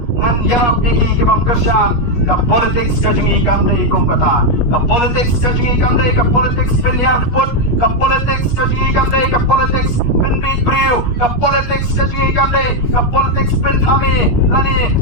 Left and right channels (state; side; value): late; right; 7.9 ms